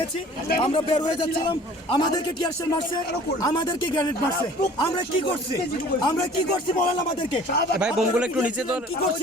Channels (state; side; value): normal; both; correlation 0.49